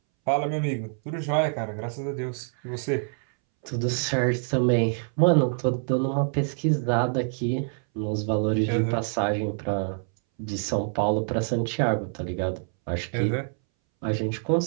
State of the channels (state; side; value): silent; left; 61 dB below the other